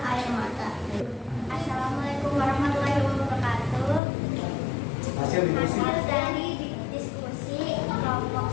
air mata. Assalamualaikum warahmatullahi wabarakatuh. Hasil diskusi. Hasil dari diskusi kelompok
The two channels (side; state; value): right; drops out; at 4.0 s